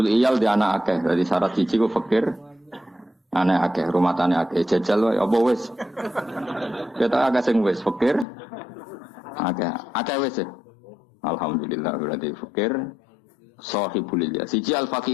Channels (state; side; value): drops out; right; at 8.2 s